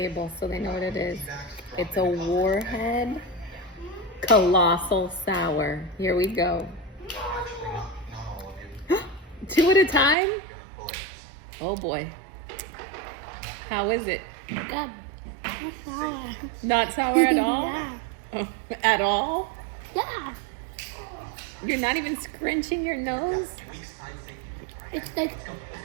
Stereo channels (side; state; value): left; drops out; at 10.2 s